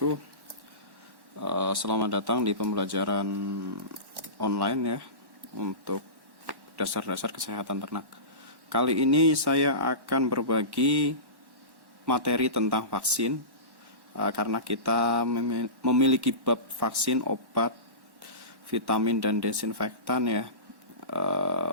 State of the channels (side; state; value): left; late; 1.1 ms